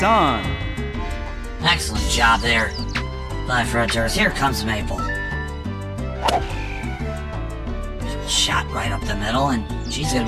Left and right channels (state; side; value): identical; both; correlation 1.00